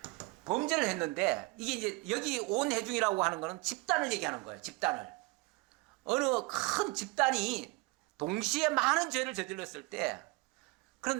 범죄를 했는데, 이게 이제 여기 온 회중이라고 하는 거는 집단을 얘기하는 거예요. 집단을. 어느 큰 집단이 동시에 많은 죄를 저질렀을 때,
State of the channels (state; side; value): quieter; left; 23.8 dB